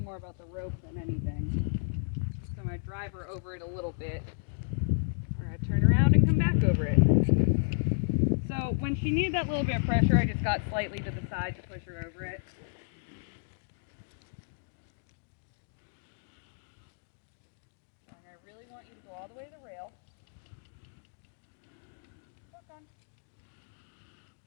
more about the rope than anything. So I'm going to drive her over it a little bit. We're going to turn around and come back over it. So when she needed that little bit of pressure, I just got slightly to the side to push her over it.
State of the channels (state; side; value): silent; right; digital silence